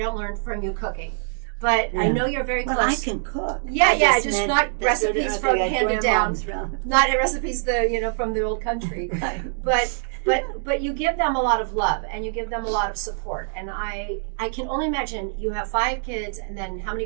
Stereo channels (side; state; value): left; silent; digital silence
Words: learn from you cooking, but yeah. I know you're very close. Well, I can cook. Yeah, just not recipes from handed down, not recipes from the old country. Right. But you give them a lot of love and you give them a lot of support. And I can only imagine you have 5 kids and then how